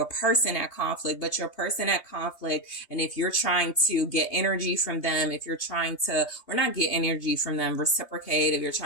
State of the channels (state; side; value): late; right; 3.2 ms